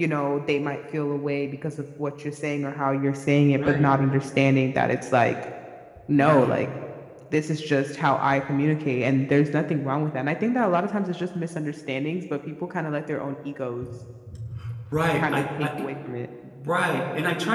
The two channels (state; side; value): identical; both; correlation 1.00